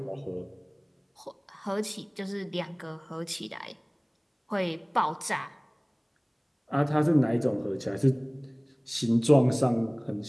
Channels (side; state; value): both; identical; correlation 1.00